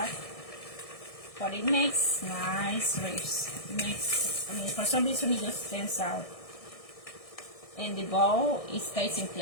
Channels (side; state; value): right; late; 1.6 ms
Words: But it makes nice wreaths. It makes, I mean, for some reason it just stands out. And the bow, it stays in